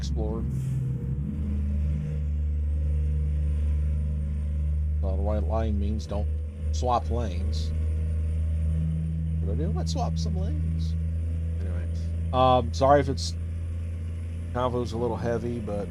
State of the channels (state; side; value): identical; both; correlation 1.00